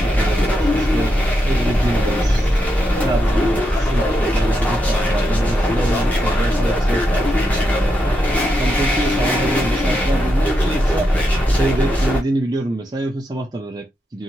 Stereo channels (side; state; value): both; normal; correlation 0.84